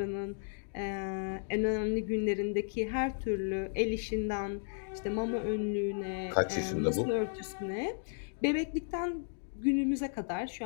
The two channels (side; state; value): right; silent; digital silence